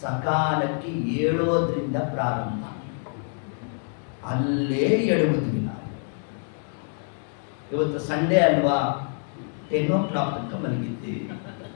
ಏಳೋದ್ರಿಂದ ಪ್ರಾರಂಭ. ಅಲ್ಲೇ ಎಡುವುದಿಲ್ಲ. ಇವತ್ತು ಸಂಡೇ ಅಲ್ವಾ, 10 o'clock ತನಕ ಮಲಗಿದ್ದೀವಿ.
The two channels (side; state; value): right; silent; 58 dB below the other